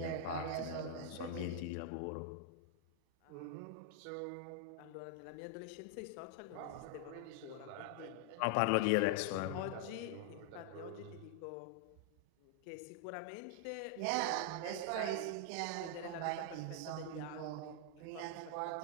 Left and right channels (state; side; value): different; both; correlation -0.01